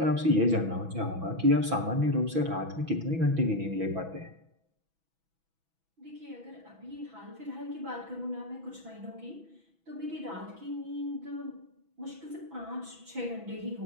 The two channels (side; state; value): left; late; 6.1 ms